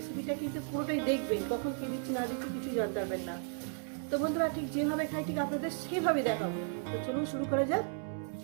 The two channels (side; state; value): left; silent; 55 dB below the other